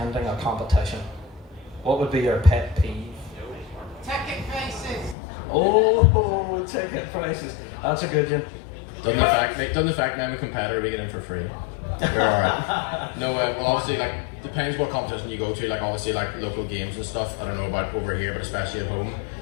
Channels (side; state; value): right; drops out; at 5.2 s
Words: a competition? What would be your pet peeve? Ticket prices. Oh, ticket prices. That's a good one. Doesn't the fact I'm a competitor we get in for free? We're alright. No, well obviously like depends what competition you go to. Like obviously like local games and stuff. I don't know about over here, but especially at home,